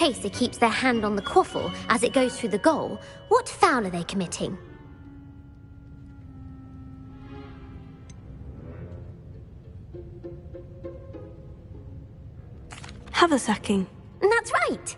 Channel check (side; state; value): both; identical; correlation 1.00